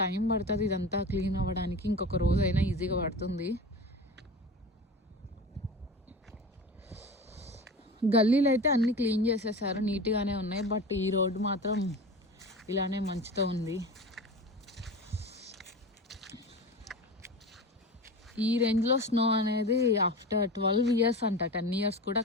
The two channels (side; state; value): both; normal; correlation 0.31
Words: టైం పడుతుంది ఇదంతా క్లీన్ అవ్వడానికి. ఇంకొక రోజు అయినా ఈజీగా పడుతుంది. గల్లీలు అయితే అన్నీ క్లీన్ చేసేసారు, నీట్గానే ఉన్నాయి. బట్ ఈ రోడ్డు మాత్రం ఇలానే మంచుతో ఉంది. ఈ రేంజ్లో స్నో అనేది ఆఫ్టర్ 12 years అంట. 10 years కూడా